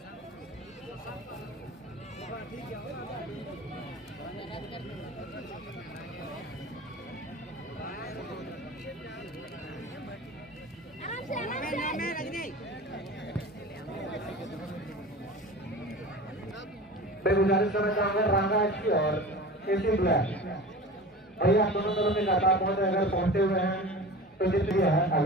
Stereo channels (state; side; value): normal; both; correlation 0.35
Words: मैं गुजारिश करना चाहूंगा रांगा एफसी और एसी ब्लैक भैया दोनों दलों में लगातार अगर पहुंचे हुए हैं तो जितनी है,